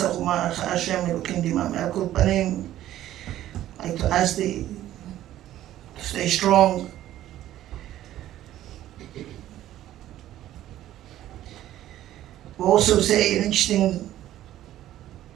u'ma Hashem Elokim Dimam Al Kol Panim. I like to ask to stay strong. We also say an interesting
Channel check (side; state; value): left; quieter; 13.3 dB